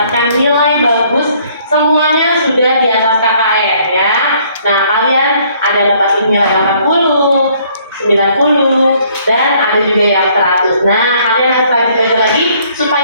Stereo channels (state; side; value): inverted; both; correlation -0.63